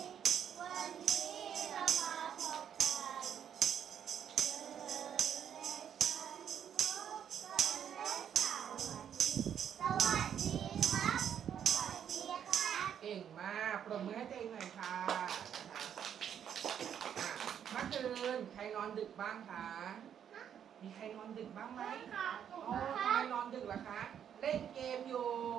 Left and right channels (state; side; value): quieter; left; 8.9 dB